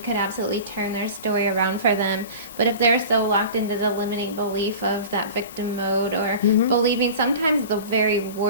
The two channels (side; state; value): both; inverted; correlation -0.37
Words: could absolutely turn their story around for them. But if they're so locked into the limiting belief of that victim mode, or believing sometimes the very